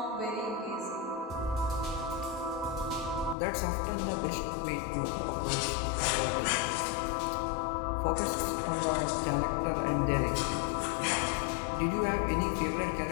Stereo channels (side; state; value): right; drops out; at 3.4 s